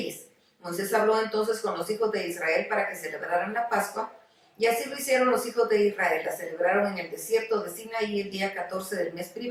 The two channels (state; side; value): identical; both; correlation 1.00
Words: Moisés habló entonces con los hijos de Israel para que celebraran la Pascua, y así lo hicieron los hijos de Israel. La celebraron en el desierto de Sinaí el día 14 del mes